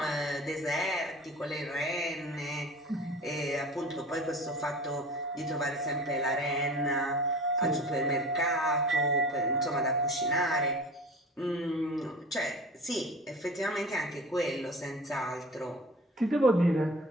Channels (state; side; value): normal; both; correlation 0.38